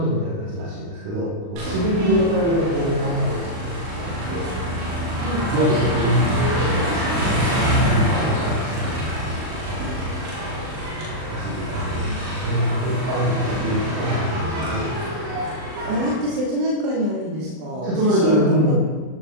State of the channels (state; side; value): late; left; 39 ms